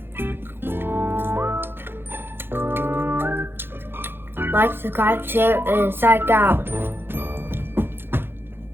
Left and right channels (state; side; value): late; left; 0.10 ms